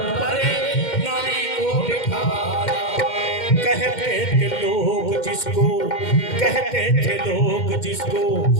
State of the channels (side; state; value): right; late; 2.1 ms